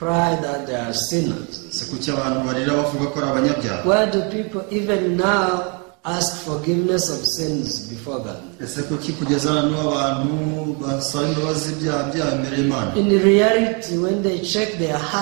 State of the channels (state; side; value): quieter; left; 34.1 dB